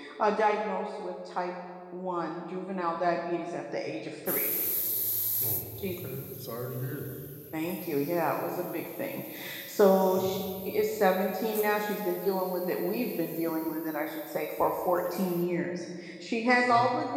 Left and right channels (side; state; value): both; identical; correlation 1.00